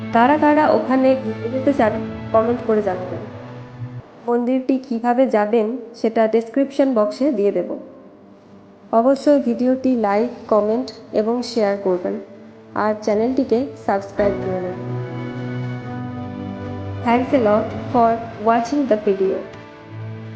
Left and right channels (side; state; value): both; identical; correlation 1.00